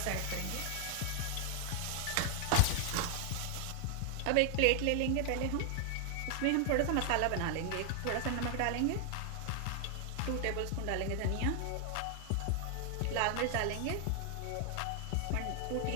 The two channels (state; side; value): different; both; correlation 0.00